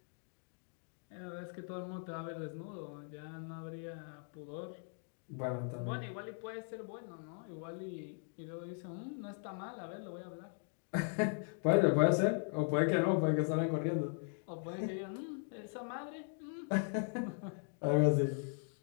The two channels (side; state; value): right; silent; 52 dB below the other